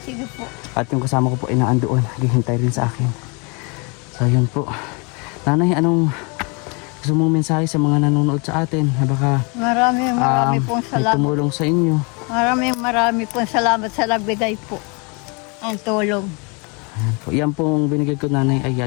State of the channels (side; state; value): right; quieter; 31.8 dB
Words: po. At yung kasama ko po ay naandoon. Naghihintay rin sa akin. So yun po. Nanay, anong gusto mong mensahe sa mga nanonood sa atin? Na baka Marami pong may salamat. tumulong sa inyo. Marami pong salamat sa nagbigay po. Ang tulong. Ayan po. Yan pong binigay ko nanay ay